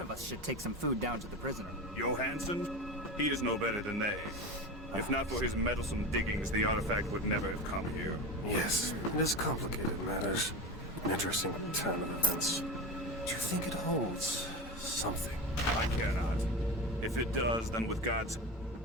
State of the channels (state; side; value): normal; both; correlation 0.25